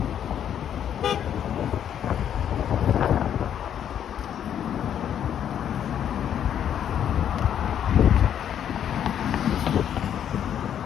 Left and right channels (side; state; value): right; quieter; 9.5 dB